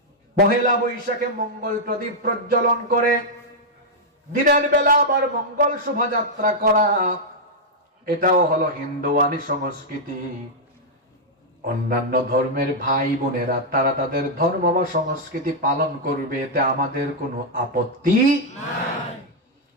পহেলা বৈশাখে মঙ্গল প্রদীপ প্রজ্বলন করে দিনের বেলা আবার মঙ্গল শোভাযাত্রা করা, এটাও হলো হিন্দুয়ানি সংস্কৃতি। অন্যান্য ধর্মের ভাই বোনেরা তারা তাদের ধর্ম বা সংস্কৃতি পালন করবে, এতে আমাদের কোনো আপত্তি নাই।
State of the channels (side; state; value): both; normal; correlation -0.04